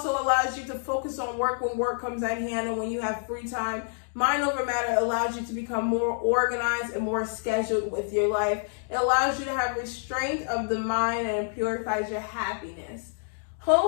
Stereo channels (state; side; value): silent; right; digital silence